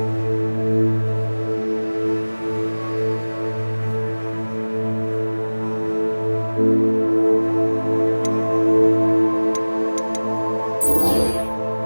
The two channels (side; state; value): both; inverted; correlation -1.00